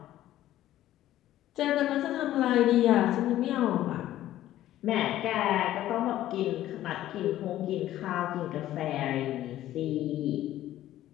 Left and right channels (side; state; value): right; quieter; 13.6 dB